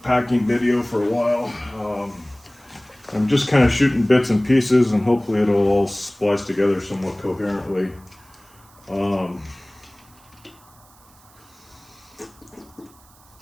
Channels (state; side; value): noise; right; hiss, 28 dB below the sound